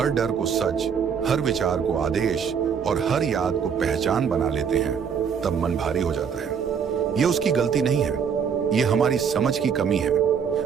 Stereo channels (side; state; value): left; quieter; 7.0 dB